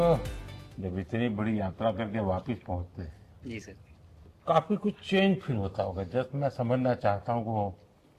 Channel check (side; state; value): both; identical; correlation 1.00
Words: जब इतनी बड़ी यात्रा करके वापस पहुंचते हैं, जी सर। काफी कुछ चेंज फील होता होगा। जस्ट मैं समझना चाहता हूँ वो